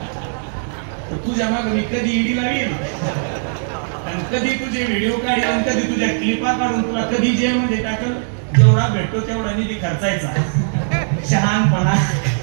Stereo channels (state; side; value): silent; left; 66 dB below the other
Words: तर तुझ्या मागे मी कधी ईडी लावील, आणि कधी तुझे व्हिडिओ काढील, आणि कधी तुझ्या क्लिपा काढून तुला कधी जेलमध्ये टाकल. जेवढा भेटतो तेवढा निधी खर्चायचा. शहाणपणा